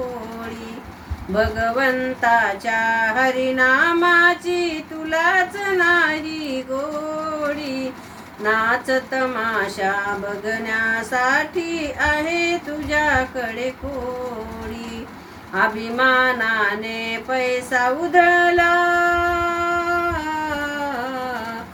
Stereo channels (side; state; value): both; identical; correlation 1.00